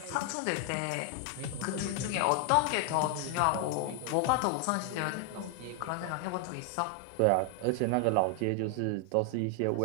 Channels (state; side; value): different; both; correlation 0.00